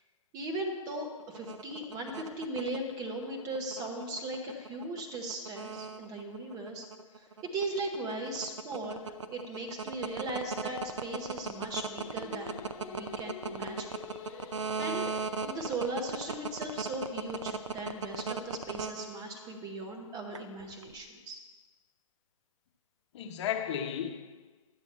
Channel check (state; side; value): normal; both; correlation -0.03